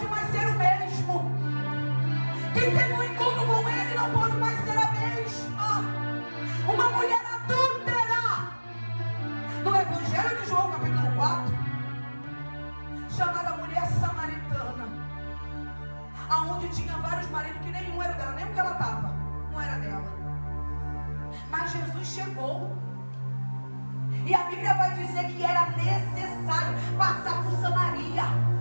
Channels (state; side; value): inverted; both; correlation -1.00